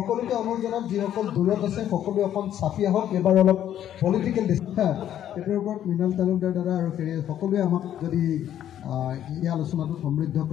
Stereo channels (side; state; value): right; quieter; 10.9 dB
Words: অনুৰোধ জনাম, যিসকল দূৰত আছে সকলোৱে অকণ চাপি আহক, এবাৰ অলপ পলিটিকেল সেইটোৰ ওপৰত মৃণাল তালুকদাৰ দাদা আৰু সকলোৱে আমাক যদি এই আলোচনাটো সমৃদ্ধ